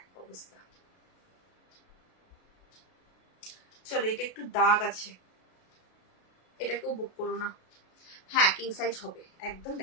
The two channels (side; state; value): right; late; 33 ms